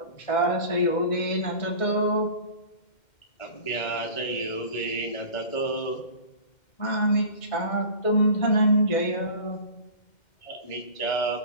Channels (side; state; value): right; late; 2.1 ms